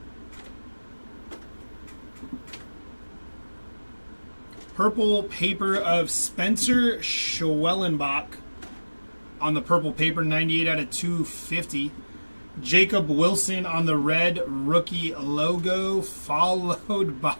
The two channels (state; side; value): inverted; both; correlation -1.00